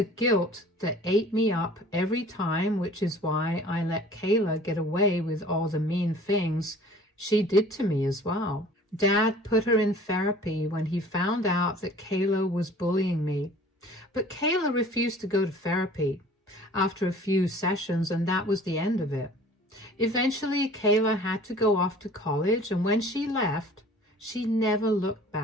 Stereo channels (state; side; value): normal; both; correlation 0.48